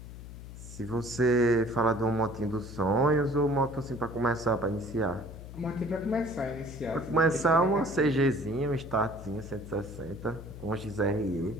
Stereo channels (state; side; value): noise; left; hum, 13 dB below the sound